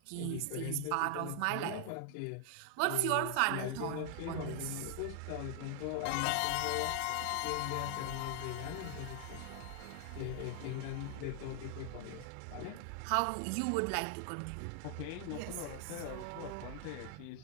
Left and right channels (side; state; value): both; different; correlation 0.00